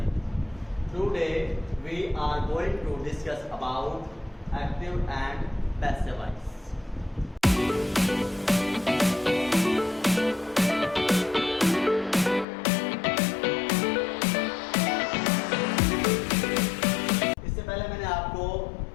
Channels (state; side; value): drops out; right; at 12.5 s